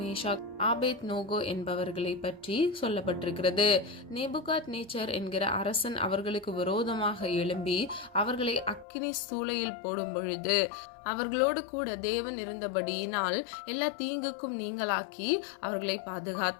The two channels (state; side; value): drops out; right; at 8.8 s